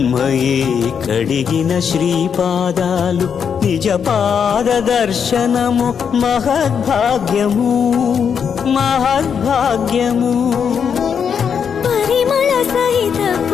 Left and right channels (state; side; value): quieter; right; 7.1 dB